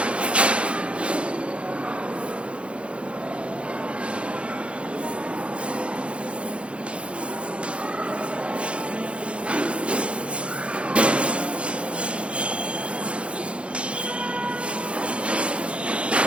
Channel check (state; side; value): late; left; 0.060 ms